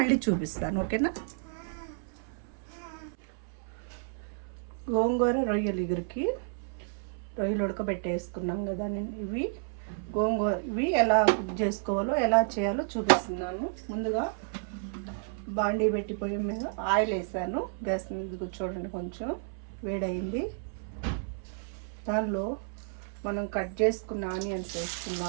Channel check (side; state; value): left; silent; 57 dB below the other